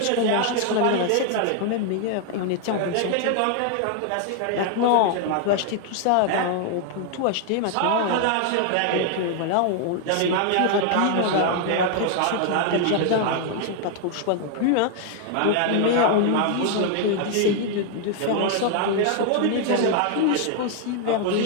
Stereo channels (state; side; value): different; both; correlation 0.00